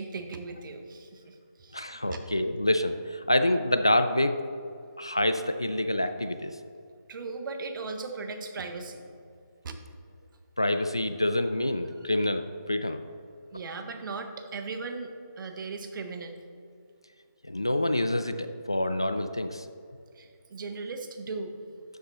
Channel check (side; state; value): both; inverted; correlation -0.86